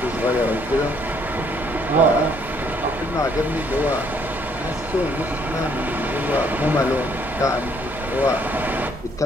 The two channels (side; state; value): both; normal; correlation 0.66